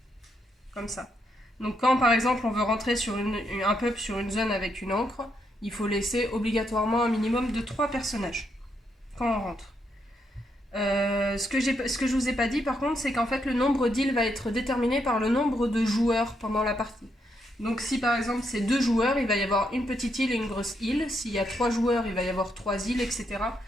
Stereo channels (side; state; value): both; normal; correlation 0.78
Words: Comme ça. Donc quand, par exemple, on veut rentrer sur un peuple sur une zone avec une encre, il faut laisser obligatoirement un minimum de 3 personnages quand on rentre. Ce que je vous ai pas dit, par contre, c'est qu'en fait, le nombre d'îles va être déterminé par le nombre de joueurs pendant la partie. Donc si, par exemple, c'est 2 joueurs, il va y avoir une petite île et une grosse île. S'il y a 3 joueurs, il va y avoir 3 îles, etc.